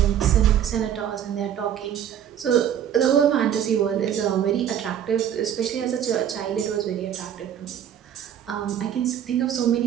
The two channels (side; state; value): left; quieter; 9.7 dB